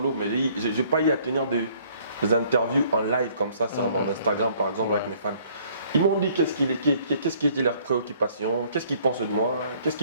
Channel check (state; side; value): inverted; both; correlation -0.61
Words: mais je n'ai pas eu à tenir des interviews en live comme ça sur mon Instagram par exemple avec mes fans. Ils m'ont dit qu'est-ce qui était leur préoccupation, qu'est-ce qu'ils pensaient de moi.